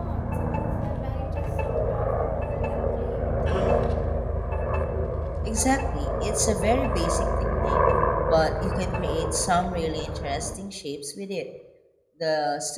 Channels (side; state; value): both; identical; correlation 1.00